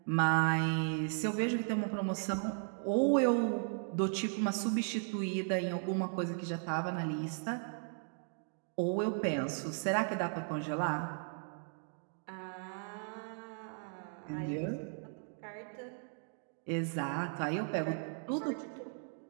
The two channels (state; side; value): silent; left; 54 dB below the other